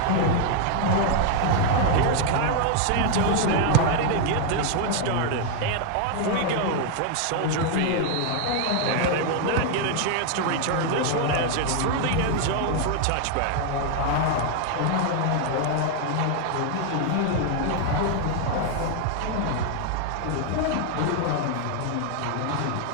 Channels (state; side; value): different; both; correlation 0.00